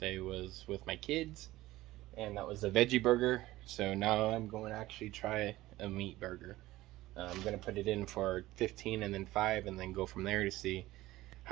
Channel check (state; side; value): quieter; left; 17.1 dB